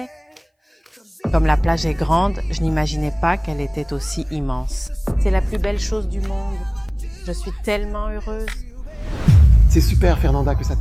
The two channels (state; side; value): identical; both; correlation 1.00